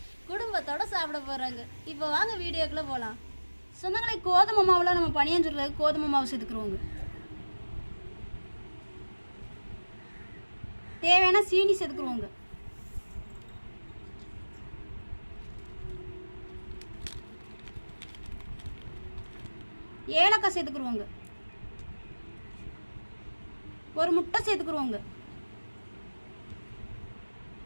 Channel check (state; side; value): inverted; both; correlation -1.00